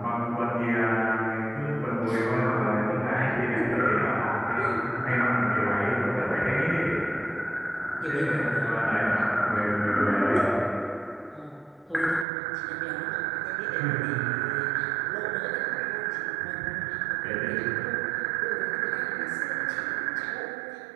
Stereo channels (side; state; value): left; drops out; at 12.2 s